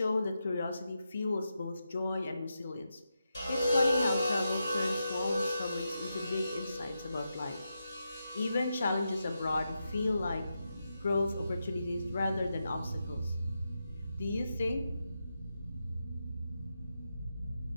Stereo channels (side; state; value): both; inverted; correlation -0.87